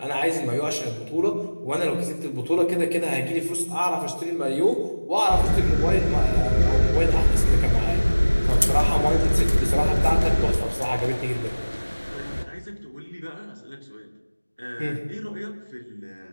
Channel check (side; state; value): both; inverted; correlation -1.00